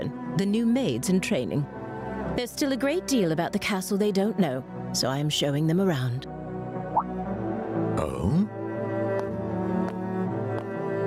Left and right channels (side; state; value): both; identical; correlation 1.00